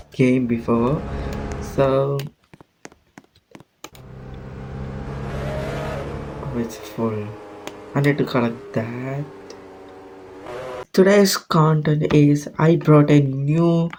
game before. So it's full. I need to collect that. Today's content is I brought a new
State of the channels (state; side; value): identical; both; correlation 1.00